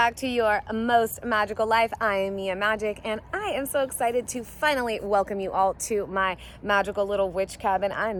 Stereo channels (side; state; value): both; identical; correlation 1.00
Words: to your most magical life. I am Mia Magic, and I am so excited to finally welcome you all to my magical little witch cabin. I